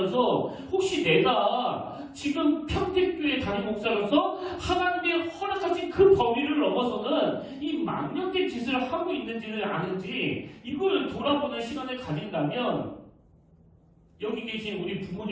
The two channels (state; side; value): identical; both; correlation 1.00